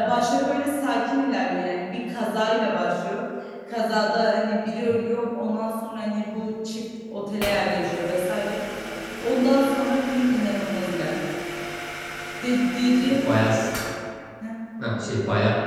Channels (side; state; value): both; identical; correlation 1.00